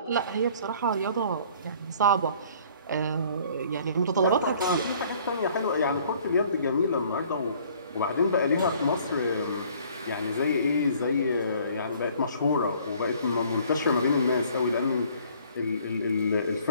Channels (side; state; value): both; inverted; correlation -0.56